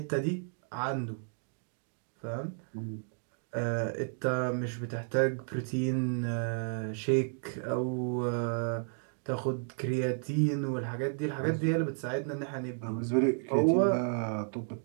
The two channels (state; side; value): silent; left; digital silence